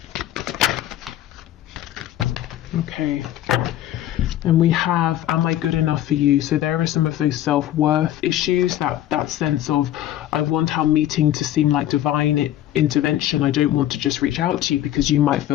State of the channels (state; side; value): quieter; right; 12.9 dB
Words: Okay. And we have, am I good enough for you? So there are some of those self-worth issues, that sense of, I want our meeting to seem like divine intervention. I don't want to just reach out to you, because you might